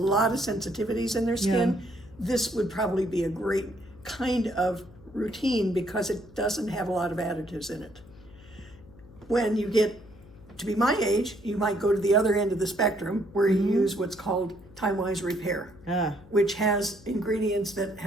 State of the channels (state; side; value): noise; left; hum, 22 dB below the sound